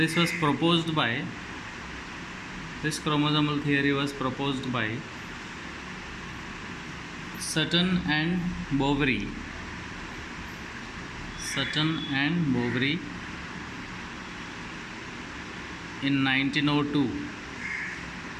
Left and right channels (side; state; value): both; identical; correlation 1.00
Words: was proposed by this chromosomal theory was proposed by Sutton and Boveri. Sutton and Boveri in 1902.